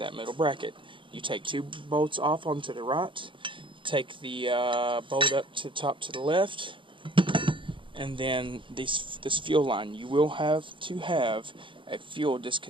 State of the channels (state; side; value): late; left; 0.24 ms